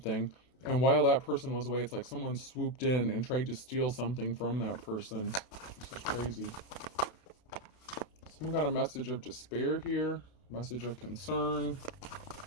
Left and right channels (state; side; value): late; right; 32 ms